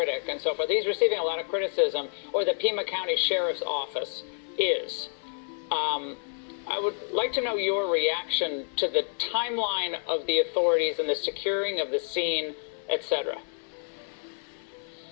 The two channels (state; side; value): silent; right; 59 dB below the other